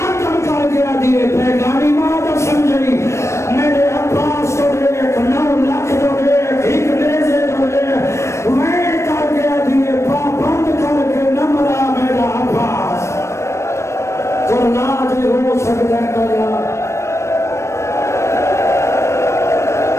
کر گیا دیئے اللہ جو ہو سکتا ہے کیا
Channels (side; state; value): right; late; 0.13 ms